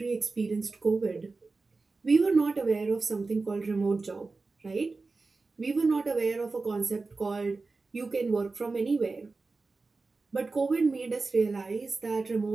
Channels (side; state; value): left; quieter; 3.8 dB